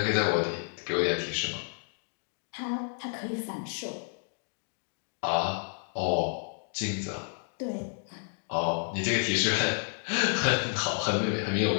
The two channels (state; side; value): silent; right; 57 dB below the other